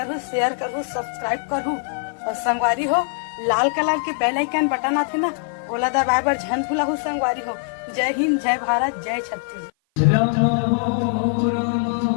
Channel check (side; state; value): right; silent; 55 dB below the other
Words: शेयर करहु, सब्सक्राइब करहु। और संगवारी हो, लाल कलर के बेल आइकन बटन आथे ना, ओला दबाए बर झन भूलहु संगवारी हो। जय हिंद, जय भारत, जय छत्तीसगढ़।